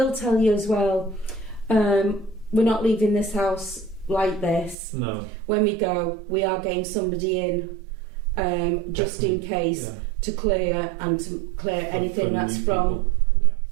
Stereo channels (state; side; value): drops out; left; at 4.8 s